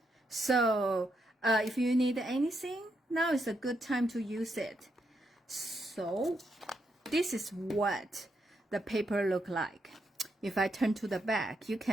So if you need anything, now is a good time to use it. So this is what the paper look like. If I turn to the back, you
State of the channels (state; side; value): normal; both; correlation 0.80